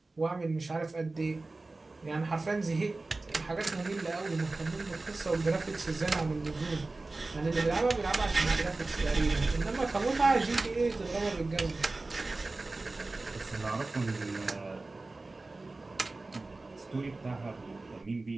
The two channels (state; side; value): quieter; left; 3.3 dB